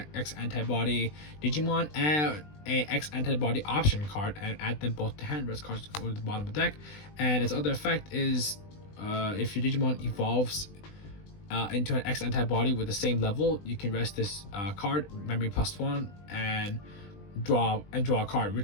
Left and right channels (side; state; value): right; late; 20 ms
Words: X antibody Digimon and a X antibody option card, and add them both to hand. Rest cards go to the bottom of the deck. And its other effect is if your Digimon evolves into an X antibody with the same level, you can rest this card, memory +1, and draw a card,